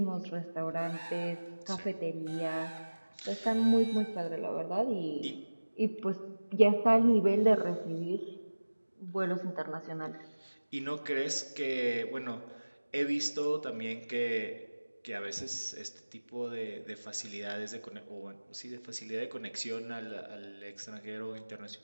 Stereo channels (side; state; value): both; inverted; correlation -1.00